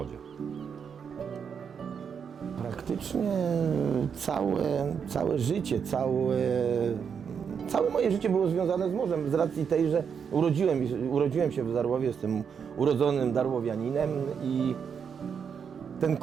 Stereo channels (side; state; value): left; quieter; 6.9 dB